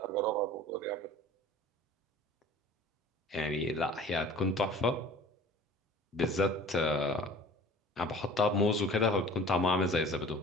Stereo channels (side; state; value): both; normal; correlation 0.44